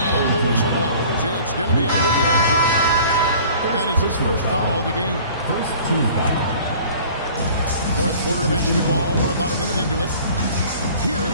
the whistle blows. It's going to be on Luka Doncic. That is his first foul of the game. First team foul. Fourth quarter of basketball. We're about a minute into it.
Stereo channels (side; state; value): both; inverted; correlation -0.48